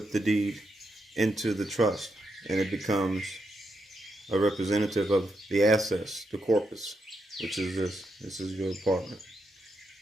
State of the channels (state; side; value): normal; both; correlation 0.82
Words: the deed into the trust, and it becomes a representative of the assets, the corpus, which is this. This is your apartment.